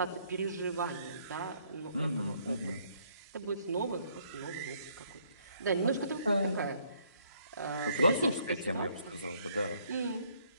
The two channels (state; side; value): inverted; both; correlation -0.67